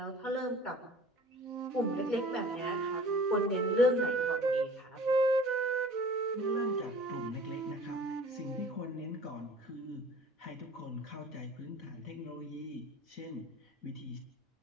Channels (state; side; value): normal; both; correlation 0.46